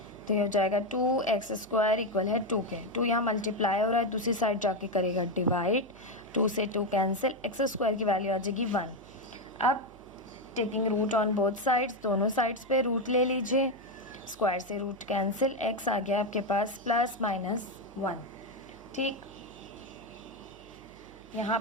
तो ये हो जाएगा 2x² इक्वल है 2 के। 2 यहाँ मल्टीप्लाई हो रहा है, दूसरी साइड जाके करेगा डिवाइड, 2 से 2 कैंसिल, x² की वैल्यू आ जाएगी 1। अब taking root on both sides, दोनों साइड्स पे रूट ले लीजिए, स्क्वायर से रूट कैंसिल, x आ गया आपके पास +-1। ठीक, यहाँ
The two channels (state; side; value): noise; right; hum, 23 dB below the sound